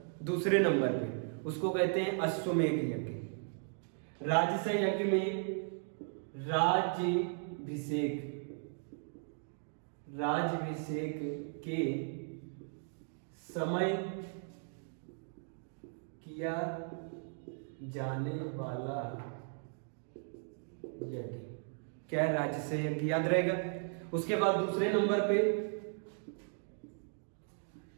दूसरे नंबर पे, उसको कहते हैं अश्वमेध यज्ञ। राजस यज्ञ में राज्याभिषेक के समय किया जाने वाला यज्ञ क्या है? राजस यज्ञ, याद रहेगा। उसके बाद दूसरे नंबर पे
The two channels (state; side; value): silent; left; 53 dB below the other